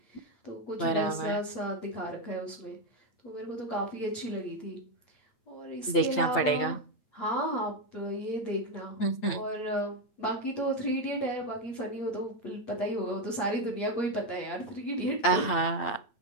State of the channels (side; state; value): right; late; 8.8 ms